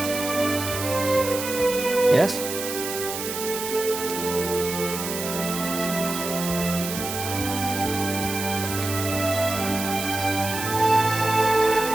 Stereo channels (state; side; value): noise; right; hiss, 6 dB below the sound